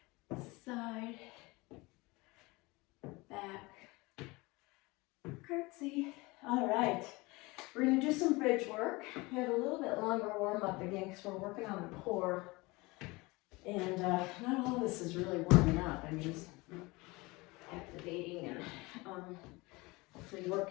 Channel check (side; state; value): right; quieter; 23.6 dB